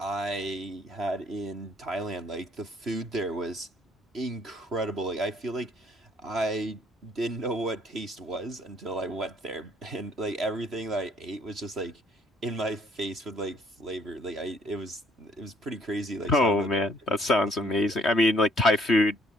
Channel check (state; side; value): normal; both; correlation 0.63